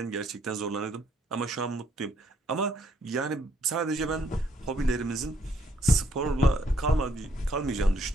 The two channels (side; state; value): both; normal; correlation 0.69